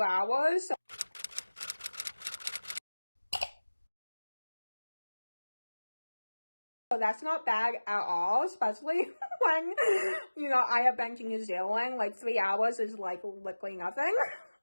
hours. So that's not bad at all, especially when, you know, I have been to New Zealand. Like, 3 hours is like literally nothing.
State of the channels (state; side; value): inverted; both; correlation -1.00